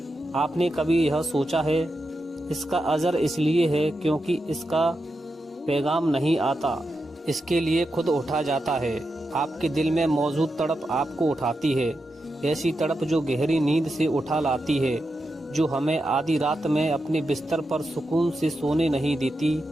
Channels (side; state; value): both; normal; correlation 0.88